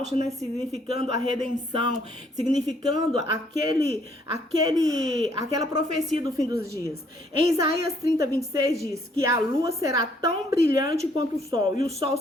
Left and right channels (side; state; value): both; normal; correlation 0.66